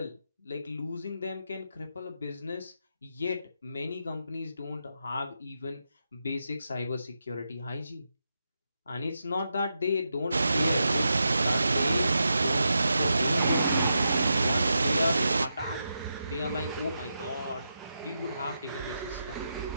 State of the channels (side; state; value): both; inverted; correlation -0.86